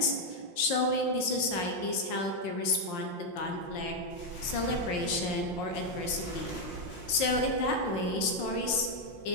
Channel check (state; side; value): late; right; 5.7 ms